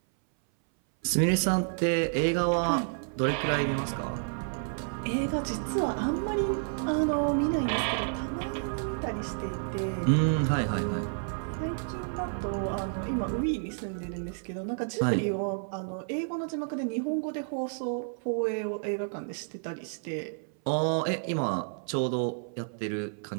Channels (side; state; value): left; silent; 58 dB below the other